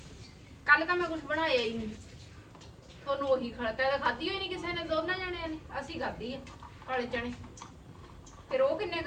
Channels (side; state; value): both; identical; correlation 1.00